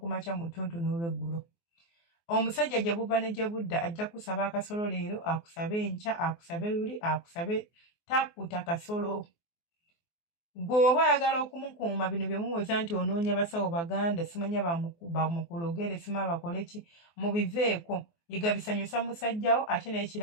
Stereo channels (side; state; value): right; late; 24 ms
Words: makya mu ttuntu n'olweggulo. Omusajja gye buva ne gye budda ajja kusaba akasolo leero, akusabe enkya, akusabe luli, akusabe takkuta kasolo. Gwe oba oyagala okumukuuma bino bye muwoza nti onoonya basawo baganda simanya bamukulogere sima bakole ki mubiveeko yiga bisanyusa musajjawo ate